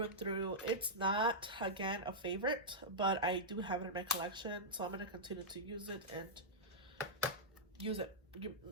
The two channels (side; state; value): both; normal; correlation -0.09